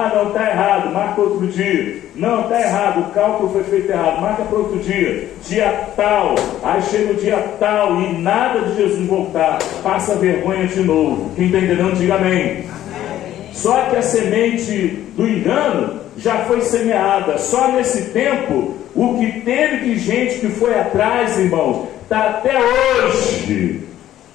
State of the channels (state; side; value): quieter; right; 12.6 dB